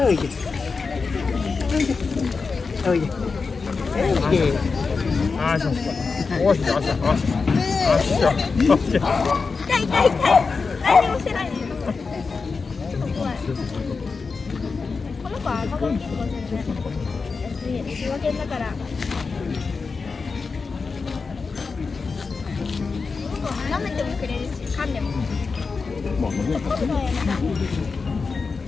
いで。おいで。おいで。あしょ。おしょ。あしょ。あしょ。痛い痛い痛い。何もしてないね。この子は赤子に育てる。仕分けだから。舐めてもくれるし、噛んでも。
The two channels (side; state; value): right; quieter; 4.6 dB